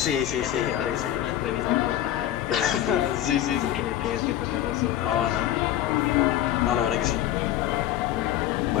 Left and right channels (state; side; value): quieter; right; 12.4 dB